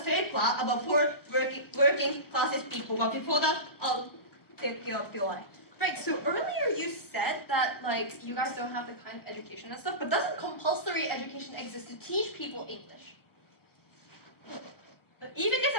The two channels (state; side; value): late; right; 1.1 ms